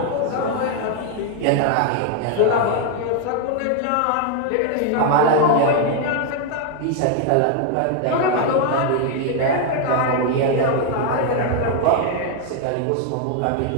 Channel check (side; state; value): both; different; correlation 0.00